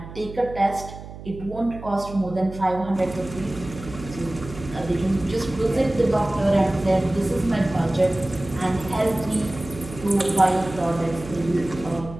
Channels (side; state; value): right; noise; hum, 13 dB below the sound